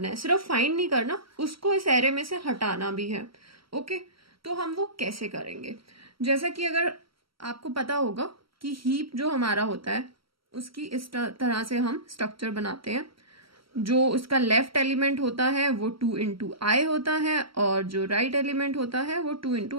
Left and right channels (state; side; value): late; left; 0.75 ms